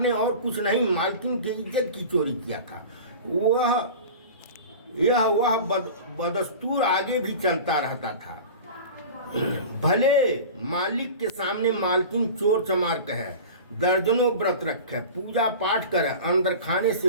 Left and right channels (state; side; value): inverted; both; correlation -0.35